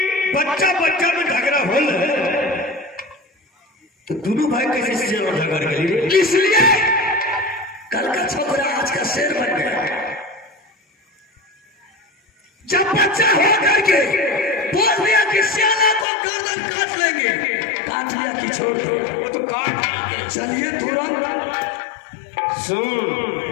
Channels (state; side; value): drops out; right; at 16.1 s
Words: बच्चा बच्चा में झगड़ा हो तो दोनों भाई कैसे झगड़ गए, इसलिए कल का छोकरा आज का शेर बन गया। जब बच्चा हो करके बोल दिया कि सियाना को गर्दन काट लेंगे, काट लिया कि छोड़ दो तो काट चलिए तुरंत सुन